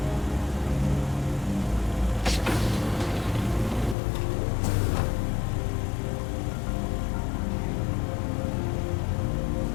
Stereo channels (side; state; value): right; drops out; at 4.0 s